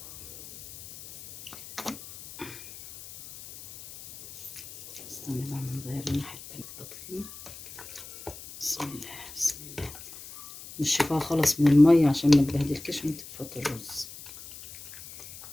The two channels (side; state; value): left; noise; hiss, 16 dB below the sound